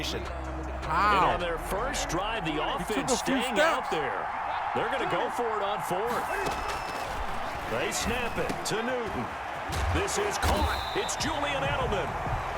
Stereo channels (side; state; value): both; identical; correlation 1.00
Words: And on their first drive, the offense staying out there. They're going to go for it on 4th. They snap it to Newton. This is caught. It's Julian Edelman.